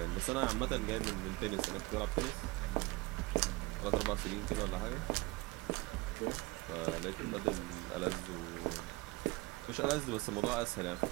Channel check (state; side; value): quieter; left; 22.3 dB